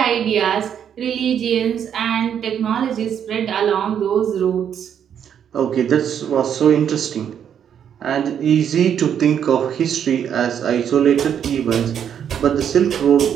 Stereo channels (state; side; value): quieter; left; 8.7 dB